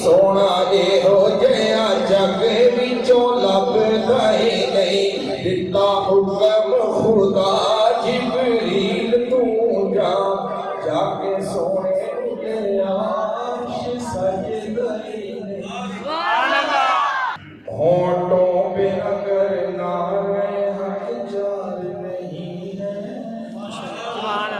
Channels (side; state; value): both; identical; correlation 1.00